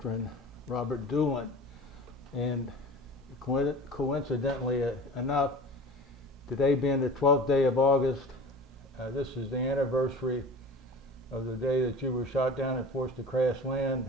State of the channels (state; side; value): normal; both; correlation 0.38